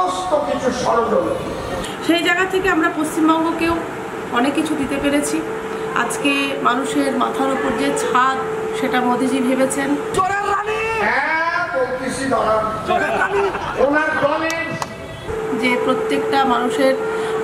কিছু ষড়যন্ত্র। সেই জায়গা থেকে আমরা পশ্চিমবঙ্গকেও অনেক কিছু দিতে পেরেছি। আজকে মানুষের মাথার উপর যে ছাদ সেটা মোদিজি ভেবেছেন। যে প্রত্যেকটা মানুষের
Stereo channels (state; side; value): identical; both; correlation 1.00